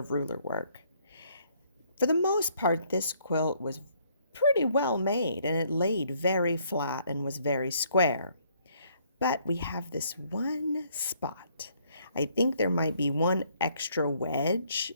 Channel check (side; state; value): both; inverted; correlation -0.66